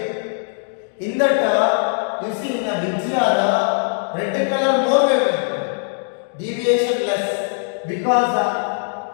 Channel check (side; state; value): right; silent; digital silence